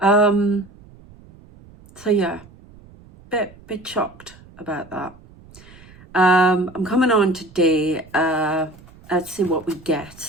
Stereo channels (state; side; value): noise; right; rumble, 23 dB below the sound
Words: yeah, bit shocked about that. I'm coming on today. Let's see what we